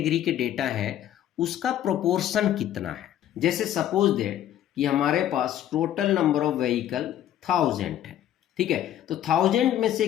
के डेटा है उसका प्रोपोर्शन कितना है। जैसे सपोज दैट कि हमारे पास टोटल नंबर ऑफ व्हीकल 1000 है। ठीक है, तो 1000 में से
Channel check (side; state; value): right; quieter; 11.4 dB